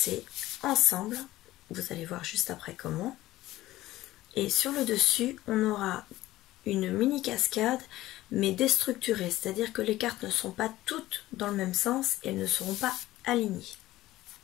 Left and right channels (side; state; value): right; quieter; 16.2 dB